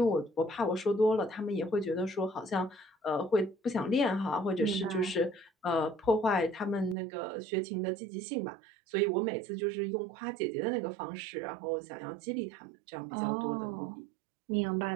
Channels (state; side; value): drops out; left; at 7.0 s